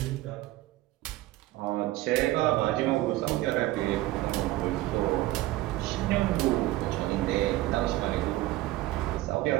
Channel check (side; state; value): left; quieter; 17.0 dB